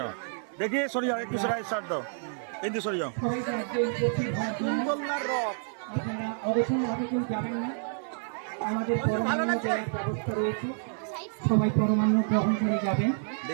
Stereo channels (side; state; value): left; silent; 59 dB below the other